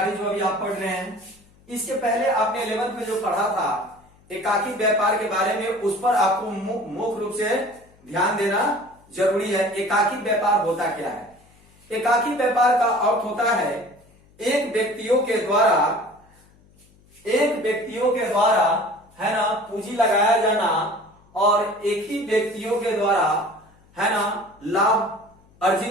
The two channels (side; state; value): left; noise; hum, 30 dB below the sound